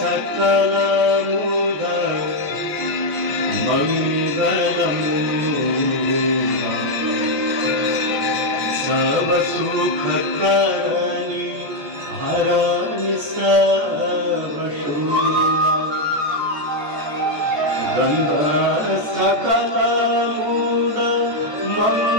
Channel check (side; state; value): left; late; 14 ms